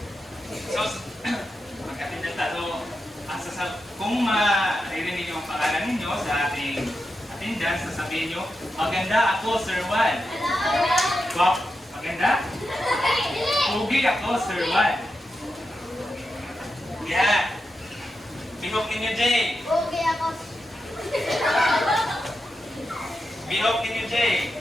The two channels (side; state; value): both; normal; correlation 0.88